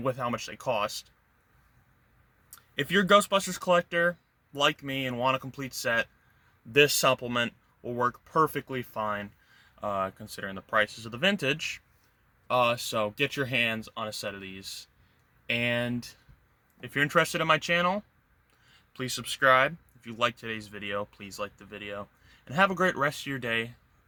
with how much they cost. If you're a Ghostbusters collector like me and want a complete set, this supplement will work perfectly fine, considering the prices of the vintage. So get your hands on a set of these. And if you're interested in my channel, please subscribe. If you liked today's video, please like the video. And have a great rest of your day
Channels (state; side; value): identical; both; correlation 1.00